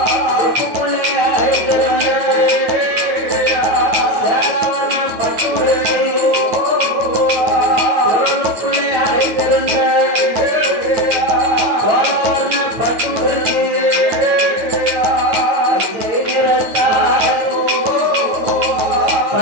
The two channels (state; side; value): late; left; 9.2 ms